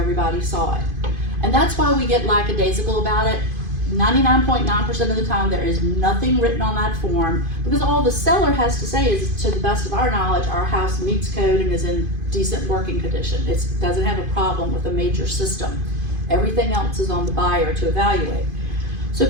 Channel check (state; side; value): late; left; 2.5 ms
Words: saw it. And that's why we get lackadaisical about it. 99.9% of the time there is nothing written on that form, because all the seller has to say is, to the best of our knowledge, our house meets code and is in decent working condition. It doesn't have a problem with a major system. Everything else is on the buyer to evaluate. So